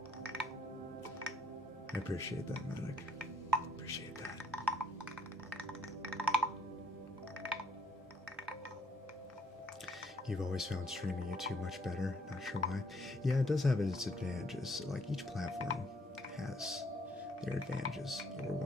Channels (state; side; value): normal; both; correlation 0.68